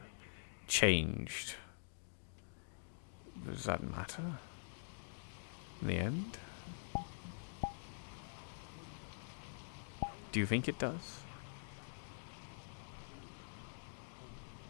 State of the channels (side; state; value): right; silent; digital silence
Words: changed. Does that matter? In the end? Do you think it does?